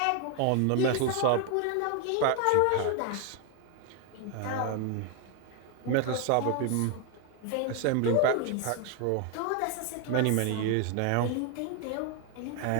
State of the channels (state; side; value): different; both; correlation 0.01